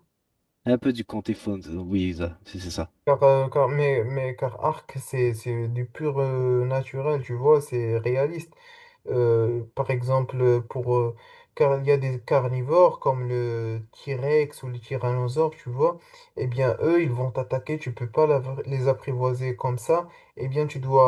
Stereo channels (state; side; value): identical; both; correlation 1.00